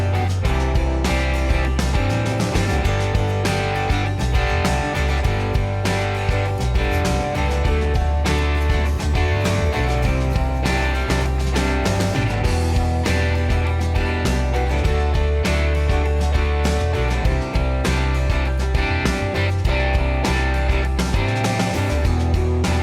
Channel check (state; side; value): identical; both; correlation 1.00